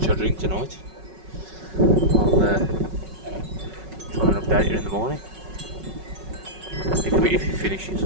I drink tonight, I'll try and update you in the morning. If it finishes.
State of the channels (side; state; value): left; late; 5.4 ms